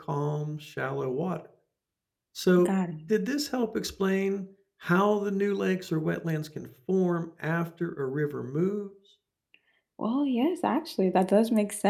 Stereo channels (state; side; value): identical; both; correlation 1.00